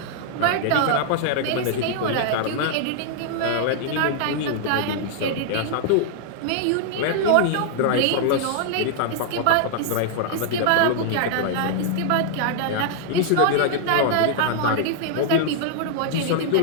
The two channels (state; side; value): different; both; correlation -0.01